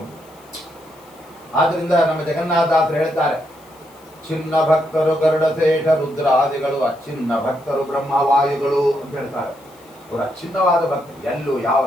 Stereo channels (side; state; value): left; noise; hiss, 28 dB below the sound